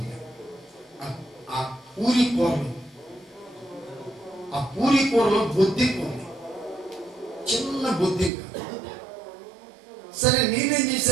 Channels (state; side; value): drops out; left; at 8.3 s